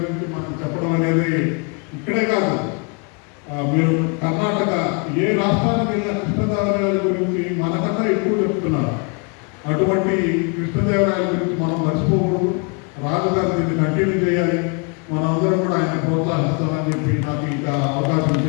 మనం చెప్పడం అనేది ఇక్కడే కాదు, మీరు కర్ణాటక ఏ రాష్ట్రానికి వెళ్ళిన కృష్ణదేవరాయల గురించి మనకన్నా ఎక్కువ చెప్తున్నారు. అటువంటి కృష్ణదేవరాయల గురించి మనం మర్చిపోకూడదు. రాజు గారు దీన్ని కంటిన్యూ చేయాలి. మనందరం కూడా ఆయన ప్రోత్సహిస్తామని చెప్పి నాకు ఇంకా అవకాశం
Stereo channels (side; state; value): right; quieter; 34.2 dB